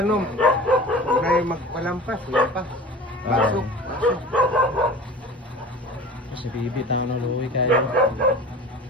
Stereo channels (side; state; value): both; normal; correlation 0.38